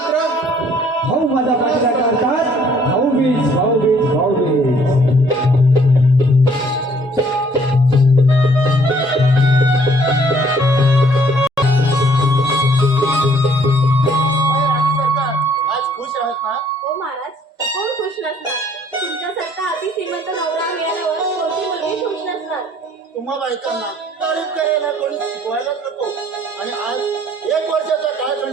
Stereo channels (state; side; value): normal; both; correlation 0.61